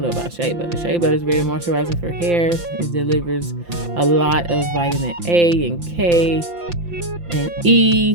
know about SHEA butter is very moisturizing for hair. It delivers a lot of vitamin A and K and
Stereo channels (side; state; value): left; late; 5.8 ms